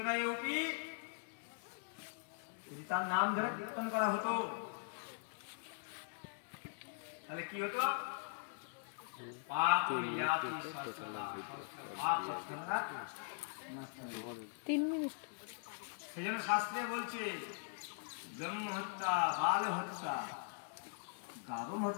যদি তার নাম ধরে কীর্তন করা হতো তাহলে কি হতো? সেজন্য শাস্ত্রে বলছে ব্রহ্ম হত্যা, বাল হত্যা, গাবম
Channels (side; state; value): right; silent; digital silence